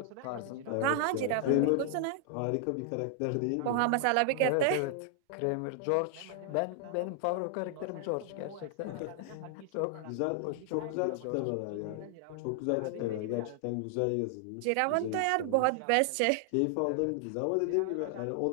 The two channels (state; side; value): different; both; correlation 0.00